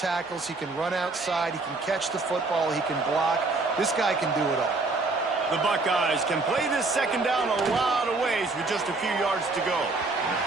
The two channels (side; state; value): left; quieter; 3.5 dB